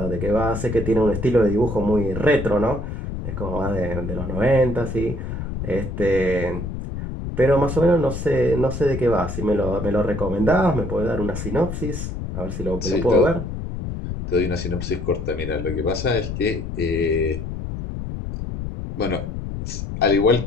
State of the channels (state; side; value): noise; left; rumble, 6 dB below the sound